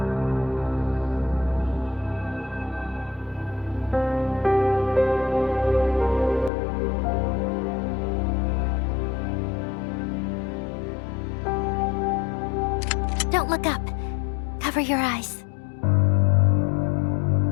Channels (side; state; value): right; drops out; at 6.5 s